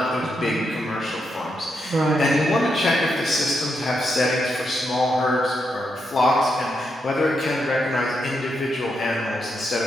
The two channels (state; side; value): normal; both; correlation 0.82